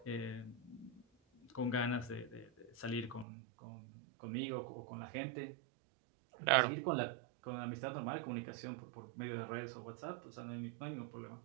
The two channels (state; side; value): drops out; left; at 3.2 s